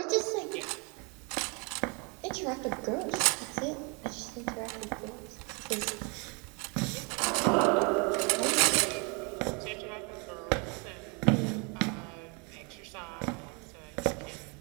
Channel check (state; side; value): quieter; left; 32.4 dB